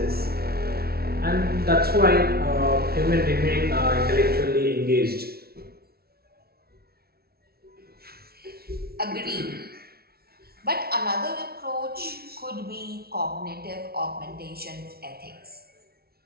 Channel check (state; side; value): late; left; 0.45 ms